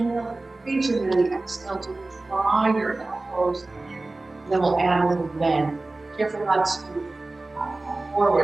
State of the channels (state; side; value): quieter; left; 3.1 dB